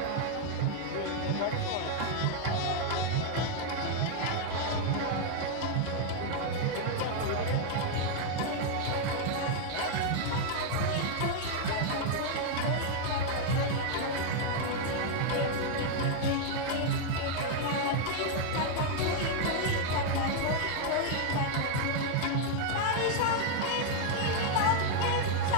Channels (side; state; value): both; different; correlation 0.00